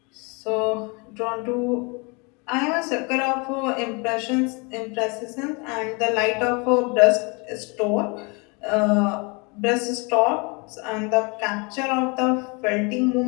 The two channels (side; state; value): right; quieter; 30.4 dB